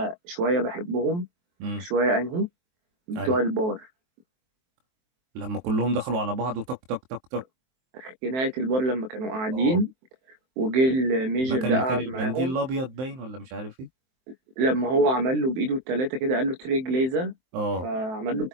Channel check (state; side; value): late; left; 23 ms